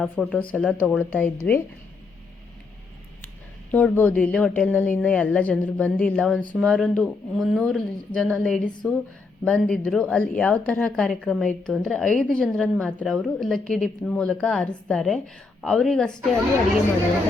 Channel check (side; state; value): right; quieter; 4.0 dB